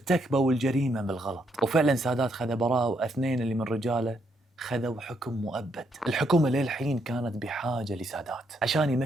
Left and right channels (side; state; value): both; normal; correlation 0.75